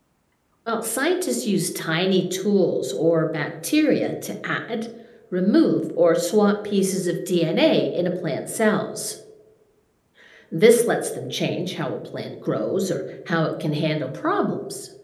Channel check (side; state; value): both; identical; correlation 1.00